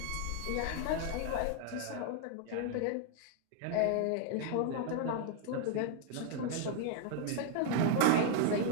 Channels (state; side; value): different; both; correlation 0.00